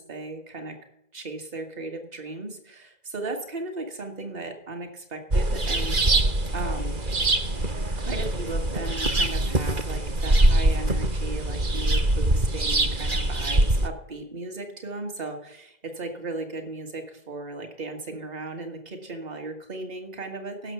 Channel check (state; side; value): late; left; 2.4 ms